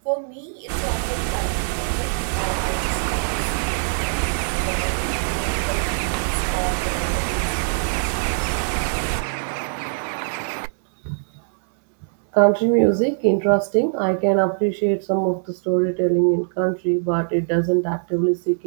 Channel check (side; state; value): left; silent; digital silence